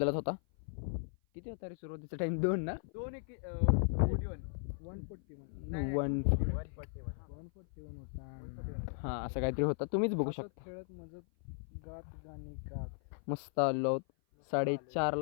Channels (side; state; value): right; silent; 53 dB below the other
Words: होता. किती होता रे सुरुवातीचा टाइम? 2 ना? 141 हां, असं काहीतरी होतं. तुम्हीच बघू शकता. खेळत मजत गात गाणी गात मस्त आलो आहोत